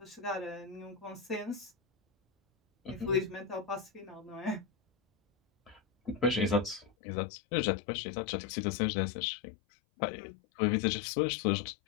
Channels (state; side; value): drops out; right; at 7.0 s